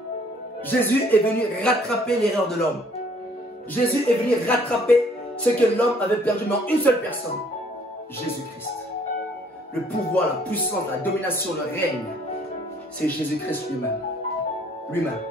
Jésus est venu rattraper l'erreur de l'homme. Jésus est venu rattraper ce que l'homme avait perdu, mais en une seule personne. Jésus-Christ. Le pouvoir, la puissance, la domination, le règne, c'est Jésus-Christ lui-même. Lui-même.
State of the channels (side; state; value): both; normal; correlation 0.60